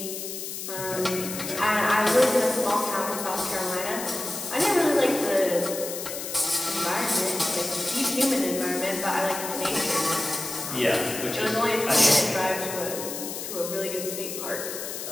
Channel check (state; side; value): noise; left; hiss, 7 dB below the sound